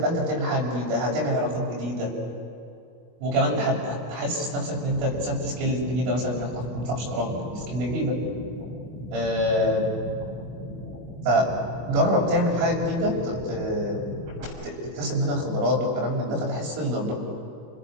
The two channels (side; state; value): left; late; 24 ms